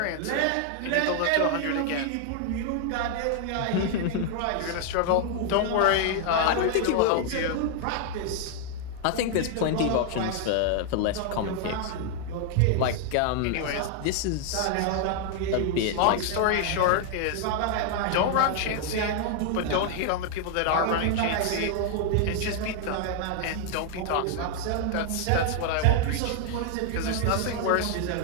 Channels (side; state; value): both; different; correlation 0.00